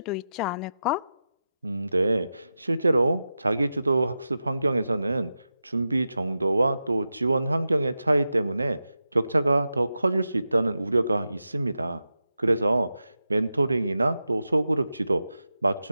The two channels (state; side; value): inverted; both; correlation -0.91